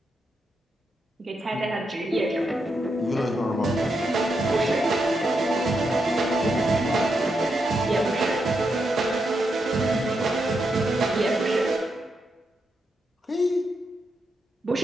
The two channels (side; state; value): both; normal; correlation 0.83